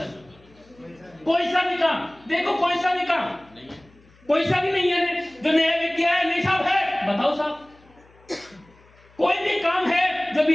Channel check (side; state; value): left; noise; hum, 29 dB below the sound